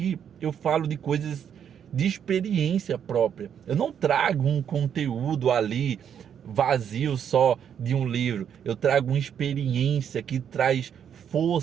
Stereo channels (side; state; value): left; quieter; 8.5 dB